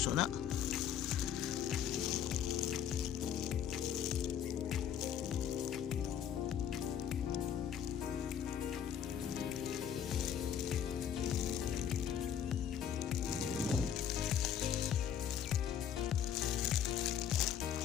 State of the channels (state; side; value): quieter; right; 9.0 dB